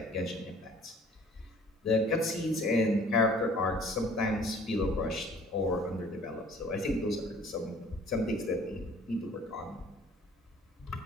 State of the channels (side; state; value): both; normal; correlation 0.54